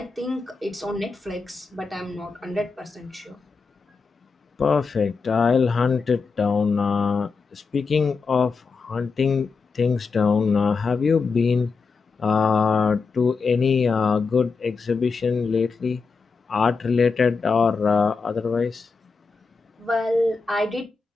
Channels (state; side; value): quieter; right; 4.7 dB